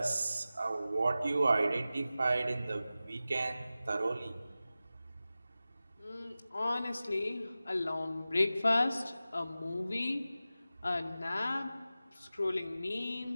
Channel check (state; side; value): inverted; both; correlation -0.95